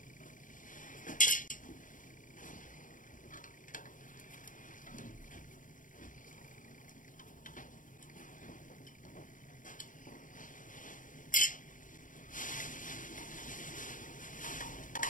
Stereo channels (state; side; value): late; right; 0.38 ms